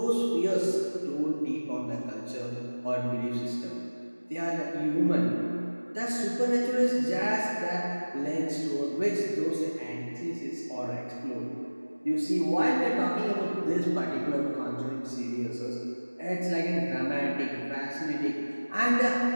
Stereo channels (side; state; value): both; inverted; correlation -1.00